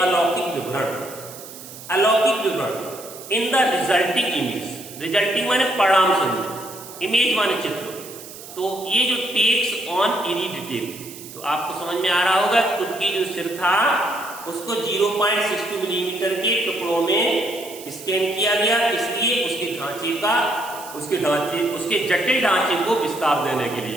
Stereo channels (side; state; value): right; noise; hiss, 15 dB below the sound